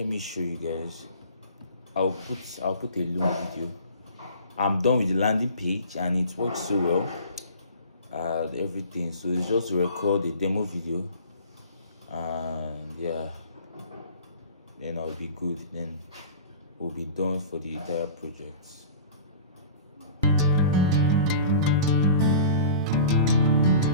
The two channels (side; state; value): both; inverted; correlation -0.40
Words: me show you guys. I'll put a long video. I'm done with the landing page, and it works so well. Everything. So it's just to record a demo video, and yeah, then I'll be good. Then we'll be done for the entire project.